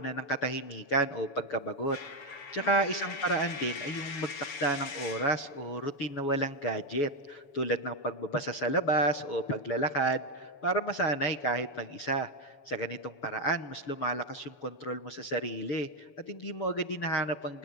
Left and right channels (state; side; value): late; right; 7.0 ms